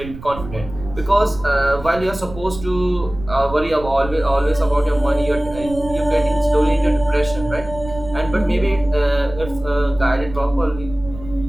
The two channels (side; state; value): right; noise; rumble, 13 dB below the sound